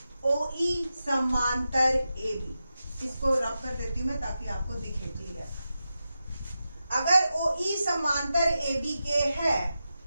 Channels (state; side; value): inverted; both; correlation -0.91